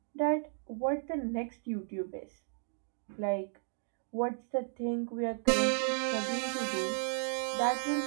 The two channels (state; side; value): silent; left; digital silence